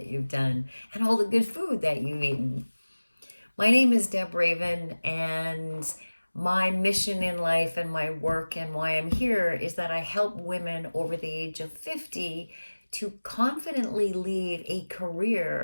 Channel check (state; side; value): inverted; both; correlation -1.00